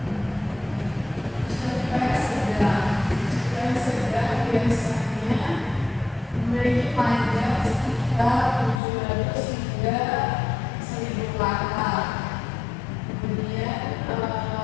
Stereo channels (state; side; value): drops out; right; at 8.8 s